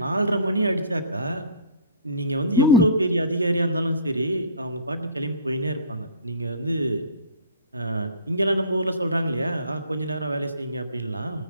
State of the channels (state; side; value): inverted; both; correlation -0.47